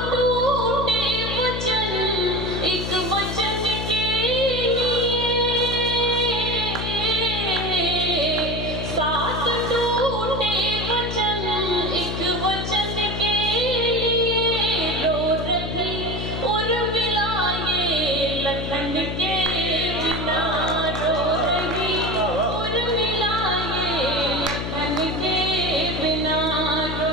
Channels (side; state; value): left; noise; hum, 4 dB below the sound